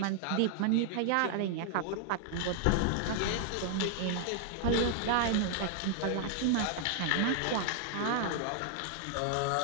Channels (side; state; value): both; different; correlation 0.00